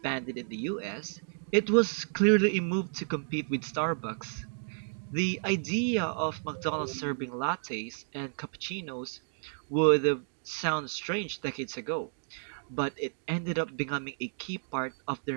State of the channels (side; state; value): left; silent; digital silence